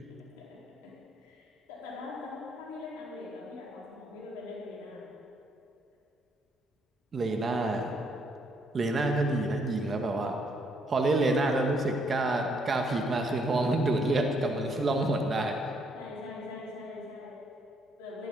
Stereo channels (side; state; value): both; normal; correlation 0.71